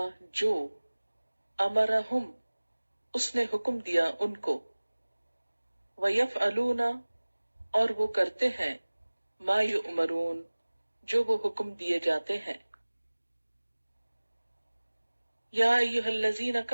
جو امرہم اس نے حکم دیا ان کو، ویفعلون اور وہ کرتے ہیں، ما یؤمرون جو وہ حکم دیے جاتے ہیں۔ یا ایہا الذین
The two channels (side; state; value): both; inverted; correlation -1.00